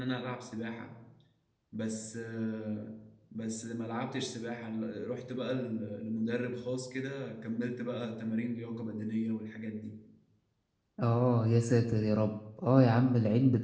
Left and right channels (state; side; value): identical; both; correlation 1.00